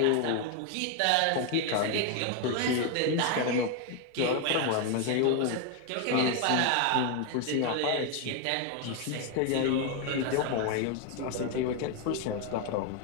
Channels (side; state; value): both; different; correlation 0.01